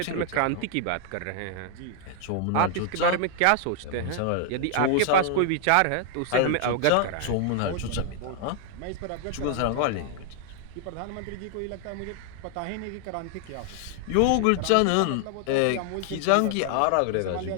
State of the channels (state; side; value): different; both; correlation 0.00